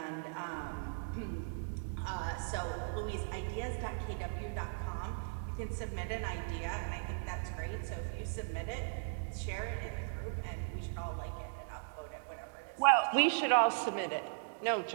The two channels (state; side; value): silent; left; digital silence